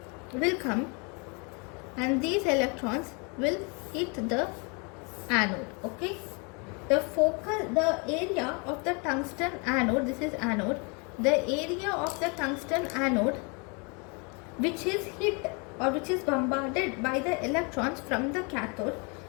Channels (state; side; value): quieter; right; 32.8 dB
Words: will come and these electrons will hit the anode. Okay. The area of the tungsten anode, this is anode, the area of the tungsten anode which is hit or which is bombarded by the electrons from the cathode